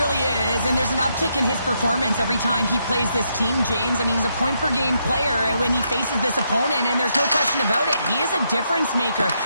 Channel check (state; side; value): inverted; both; correlation -0.78